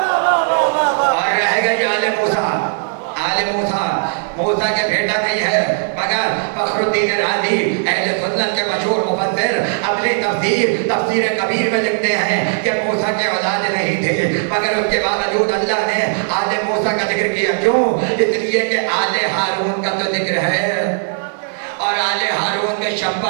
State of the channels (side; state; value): left; silent; digital silence